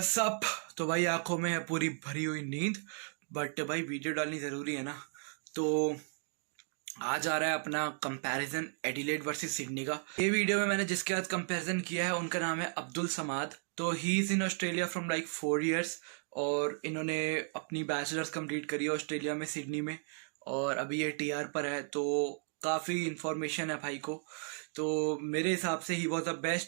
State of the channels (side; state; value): left; silent; 55 dB below the other